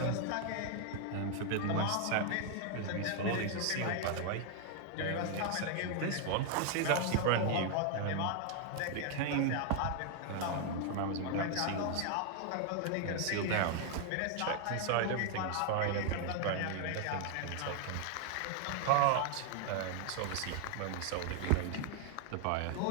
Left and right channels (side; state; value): both; different; correlation 0.00